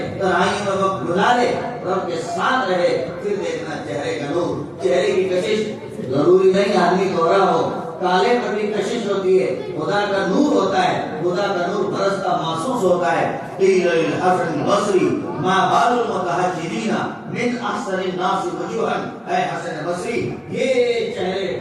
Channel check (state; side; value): identical; both; correlation 1.00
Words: تنہائی میں وقت گزارے، رب کے ساتھ رہے، پھر دیکھنا چہرے کا نور. چہرے کی کشش ضروری نہیں آدمی گورا ہو، کالے پر بھی کشش ہوتی ہے. خدا کا نور ہوتا ہے، خدا کا نور برستا محسوس ہوتا ہے. قیل للحسن البصری ما بال المتحجرین من احسن الناس وجوہا. اے حسن بصری، یہ چہرے